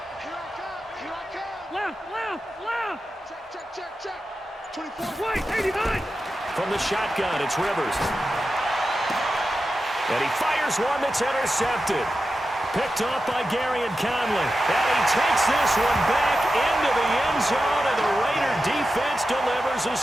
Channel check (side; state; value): both; normal; correlation 0.91